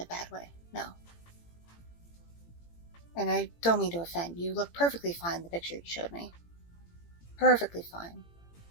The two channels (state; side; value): late; right; 18 ms